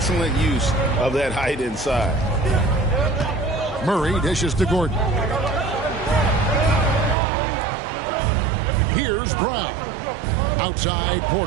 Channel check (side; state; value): left; drops out; at 7.2 s